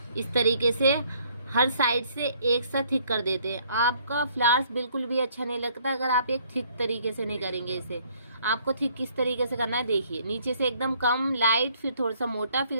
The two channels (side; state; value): both; inverted; correlation -0.63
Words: इस तरीके से हर साइड से एक साथ थिक कर देते हैं। आपका फ्लावर्स बिल्कुल भी अच्छा नहीं लगता अगर आप एक थिक तरीके से नहीं करेंगे इसे। आपको थिक किस तरीके से करना है, देखिए नीचे से एकदम कम लाइट, फिर थोड़ा सा मोटा, फिर